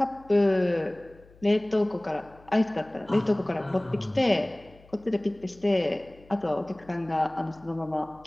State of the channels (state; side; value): noise; left; hum, 26 dB below the sound